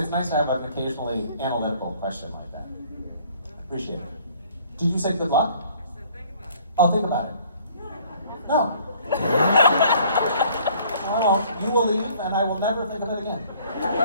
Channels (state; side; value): inverted; both; correlation -0.57